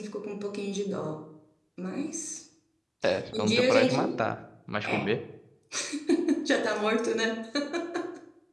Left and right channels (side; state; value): both; identical; correlation 1.00